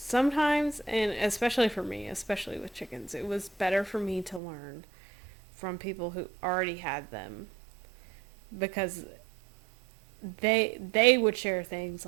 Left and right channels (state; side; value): drops out; left; at 4.4 s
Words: and especially for me, especially with chickens, it was better for me to learn from people who already had them, because they would share things